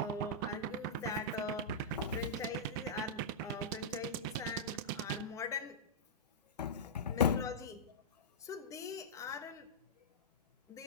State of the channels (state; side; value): normal; both; correlation -0.12